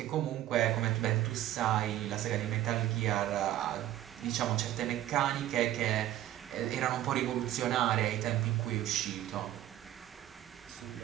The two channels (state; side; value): quieter; left; 13.3 dB